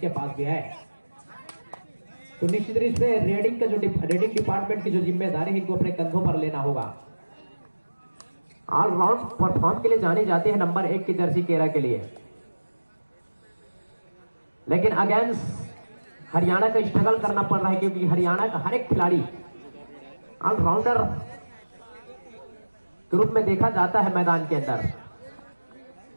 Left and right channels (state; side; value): inverted; both; correlation -1.00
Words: पास भी है। तो निश्चित रूप से रेडिंग का जो रेडिंग डिपार्टमेंट की जो जिम्मेदारी है इनको अपने कंधों पर लेना होगा। ऑलराउंड परफॉर्म के लिए जानी जाती है नंबर 1 की जर्सी केरा के लिए, लेकिन अगेंस्ट हरियाणा का स्ट्रगल करना पड़ रहा है, क्योंकि हरियाणा का हर एक खिलाड़ी ऑलराउंडर के रूप में देखा जाता है मैदान के अंदर।